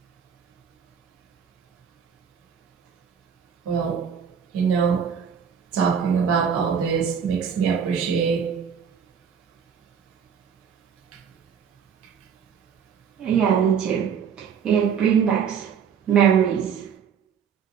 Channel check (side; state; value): left; quieter; 7.3 dB